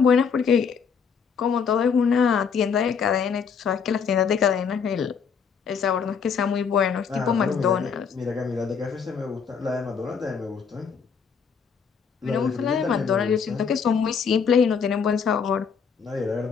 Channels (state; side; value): quieter; right; 6.4 dB